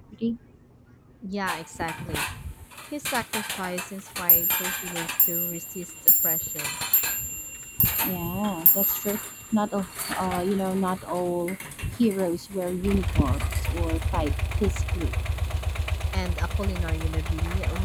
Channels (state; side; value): identical; both; correlation 1.00